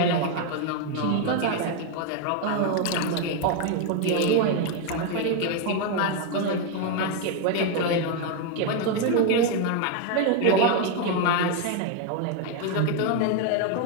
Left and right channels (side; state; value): both; different; correlation 0.01